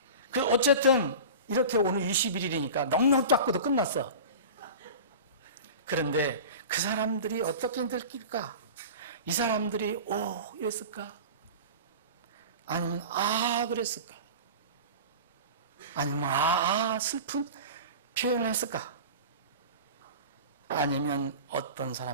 어쨌든 이렇게 오늘 21일이니까 넉넉 닦고도 끝났어. 그런데 그 사람들이 어떻게 느낄까? 이 사람들이 이랬을까? 아니면 그랬을까? 아니면 슬픈 표현을 했을까? 아니면 어떤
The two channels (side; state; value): both; inverted; correlation -0.34